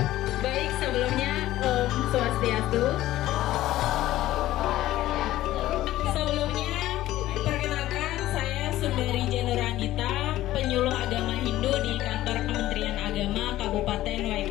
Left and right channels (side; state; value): right; quieter; 15.0 dB